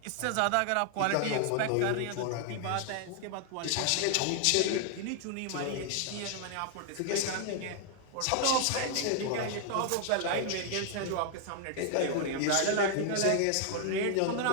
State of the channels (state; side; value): different; both; correlation 0.00